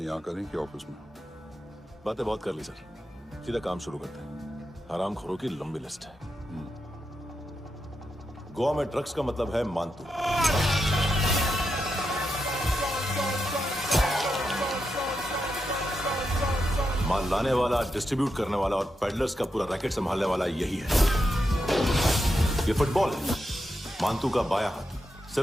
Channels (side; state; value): both; normal; correlation 0.86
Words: यहाँ करें कि ऑफिस में? बातें बहुत कर ली सर, सीधा काम शुरू करते हैं। हरामखोरों की लंबी लिस्ट है। गोवा में ड्रग्स का मतलब है मानतू। माल लाने वाला, डिस्ट्रीब्यूट करने वाला और पेडलर्स का पूरा रैकेट संभालने वाला यही है। ये फुटबॉल है, मानतू का बायां हाथ।